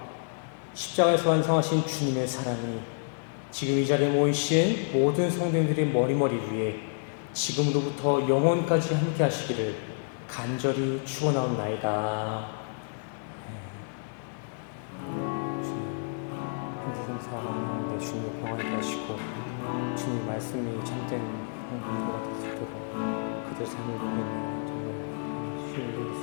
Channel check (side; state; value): right; silent; digital silence